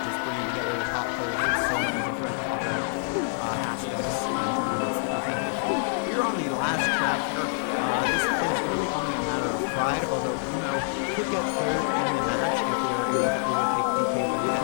bringing together the top players from so many different other aspects and tournaments that we've had before. We are on the last track here. This is really only a matter of pride, although Uno could get 3rd in the match if they are able to overtake DK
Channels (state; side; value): silent; right; 61 dB below the other